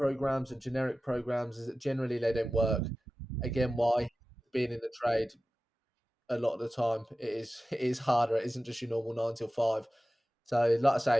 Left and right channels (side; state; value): both; normal; correlation 0.95